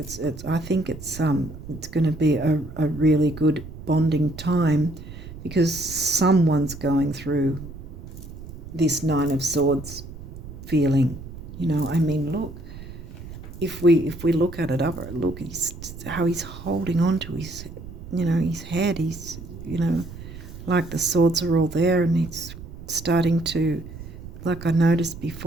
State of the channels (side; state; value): right; noise; rumble, 13 dB below the sound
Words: I think it's going to be a really good bonding time, because someone's going through this Nine of Swords feeling. Look, if we look at it up, look, how he's holding on to his, his head. He's, like the swords are all there, and he's starting to, like I noticed